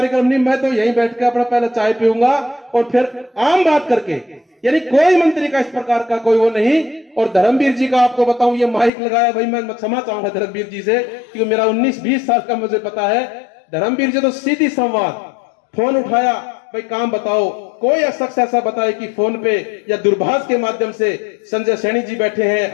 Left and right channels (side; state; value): right; drops out; at 8.9 s